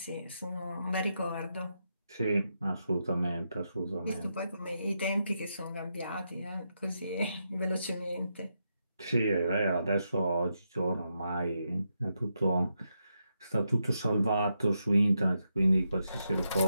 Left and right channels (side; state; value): both; inverted; correlation -0.84